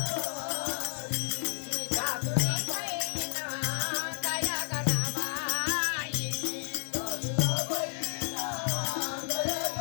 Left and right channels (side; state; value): right; silent; digital silence